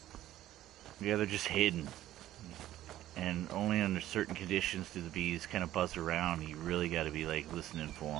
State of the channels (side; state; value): left; quieter; 13.7 dB